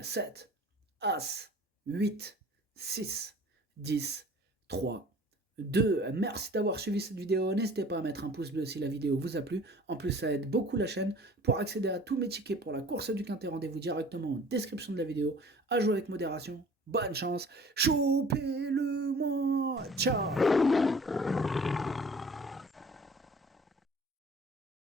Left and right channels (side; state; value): both; normal; correlation 0.48